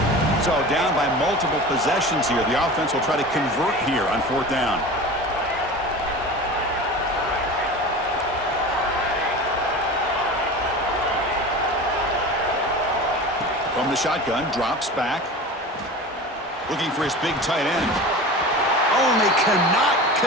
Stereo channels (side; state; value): both; normal; correlation 0.34